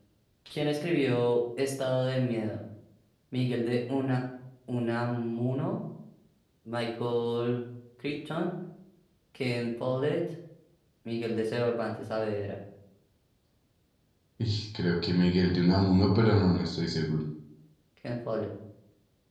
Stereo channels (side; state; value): both; identical; correlation 1.00